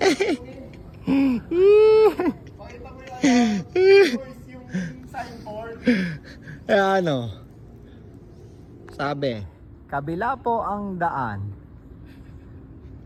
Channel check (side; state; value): both; identical; correlation 1.00